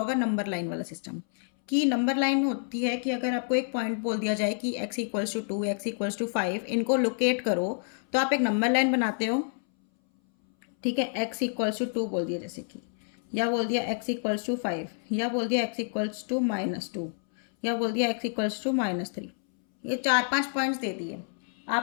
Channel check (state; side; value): silent; right; 59 dB below the other